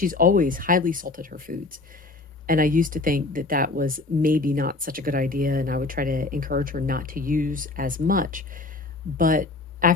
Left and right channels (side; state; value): right; quieter; 3.4 dB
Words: always highly salted her foods. And I used to think that that was maybe not such a good idea, and I would try to encourage her not to use as much. But